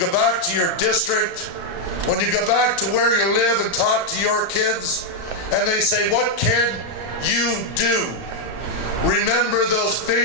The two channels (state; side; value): late; right; 35 ms